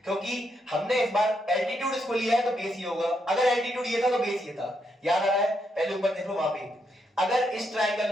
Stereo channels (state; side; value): normal; both; correlation 0.79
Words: क्योंकि हमने इस बार एल्टीट्यूड इसको लिया है तो बेस ही होगा, अगर एल्टीट्यूड ये था तो बेस ये था, याद आ रहा है, पहले ऊपर देख लो वहां पे, अगर इस